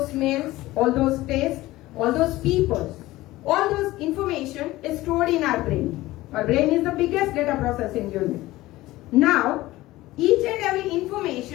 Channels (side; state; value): right; quieter; 17.7 dB